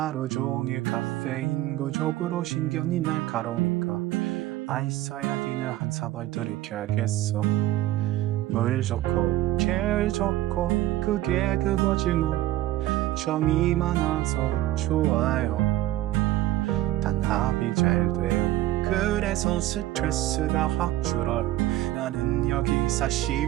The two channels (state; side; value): quieter; left; 15.3 dB